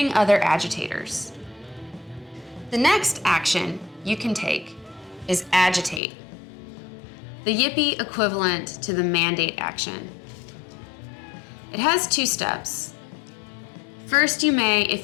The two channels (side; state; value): right; drops out; at 6.0 s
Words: other agitators. The next action you can take is Agitate, the Yippee equivalent to the Mandate action. It has 2 steps. First, you may,